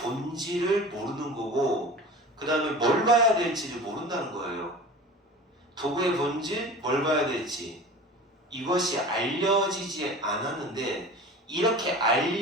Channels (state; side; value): normal; both; correlation 0.37